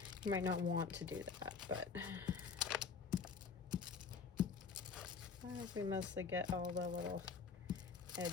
You might not want to do that, but I hope we mostly get all the little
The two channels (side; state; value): right; quieter; 5.5 dB